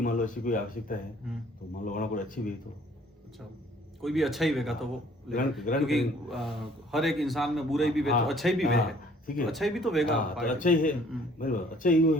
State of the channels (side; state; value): both; normal; correlation 0.58